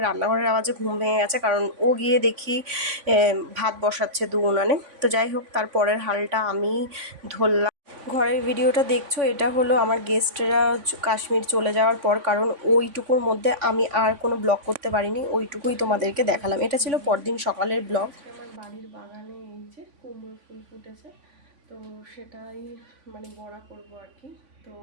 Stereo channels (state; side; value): late; left; 3.5 ms